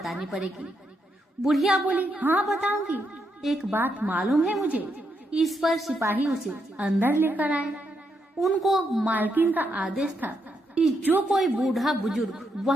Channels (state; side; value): normal; both; correlation 0.80